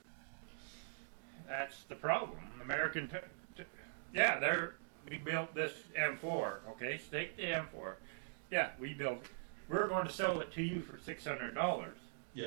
That's the problem. We built this M4, okay? Take the M4. Yeah, we built it. We're going to sell it to you for $600.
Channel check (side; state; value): left; silent; digital silence